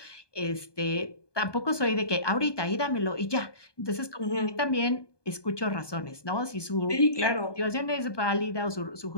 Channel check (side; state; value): right; late; 1.2 ms